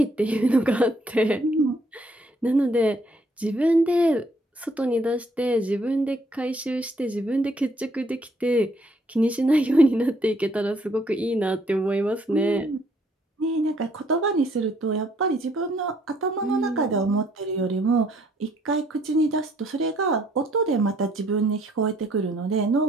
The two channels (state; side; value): normal; both; correlation 0.66